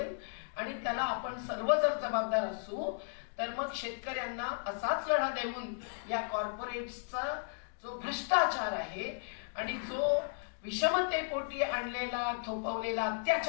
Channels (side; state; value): right; silent; digital silence